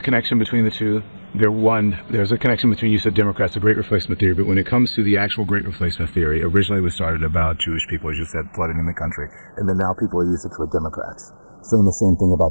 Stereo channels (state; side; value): inverted; both; correlation -1.00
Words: between the two? There's a connection between, you said Democrats, the Great Replacement theory, but when it comes to the actual Great Replacement theory, originally it was started about Jewish people, as you said, flooding in the country, and then now people are using it for Democrats, saying the same thing